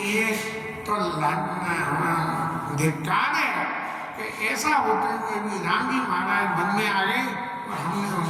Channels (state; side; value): identical; both; correlation 1.00